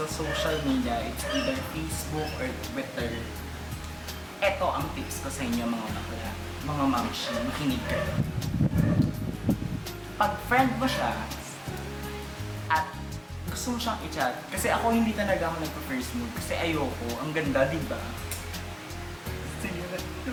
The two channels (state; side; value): identical; both; correlation 1.00